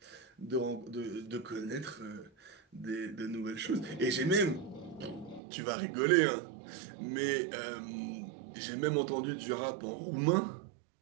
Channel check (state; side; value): drops out; left; at 5.4 s